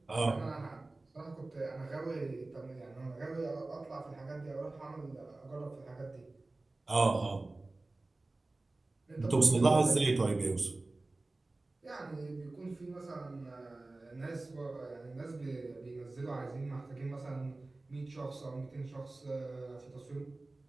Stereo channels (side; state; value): left; quieter; 3.1 dB